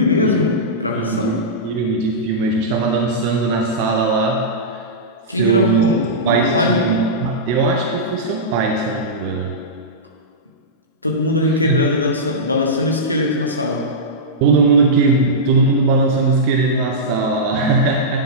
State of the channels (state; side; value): normal; both; correlation -0.14